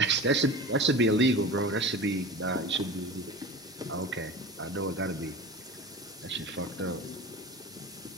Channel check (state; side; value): normal; both; correlation 0.33